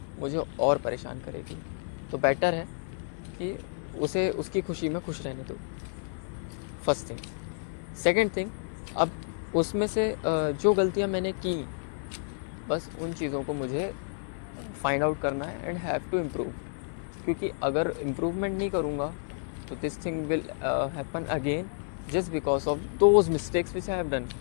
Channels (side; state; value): right; silent; 58 dB below the other